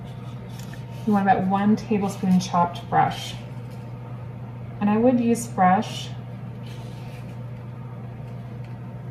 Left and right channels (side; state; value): both; identical; correlation 1.00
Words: You want about 1 tablespoon chopped fresh. And I would use fresh